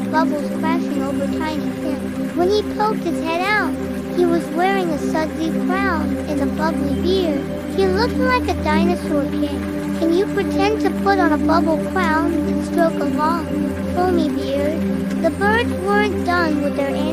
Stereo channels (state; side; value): identical; both; correlation 1.00